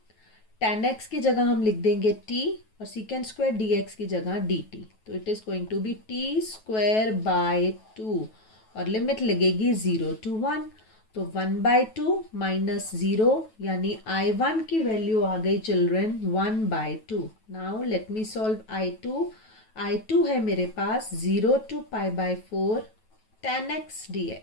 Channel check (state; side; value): late; right; 9.2 ms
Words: tan x की जगह हम लिख देंगे t और secant स्क्वायर dx की जगह dt। तो it is going to be t square by 2 और लिमिट लगेगी 0 to 1। तो 1/2 माइनस 0 यानी I1 की वैल्यू आ गई children 1/2। Now let me solve I2। I2 है मेरे पास 0 to π/4 tan x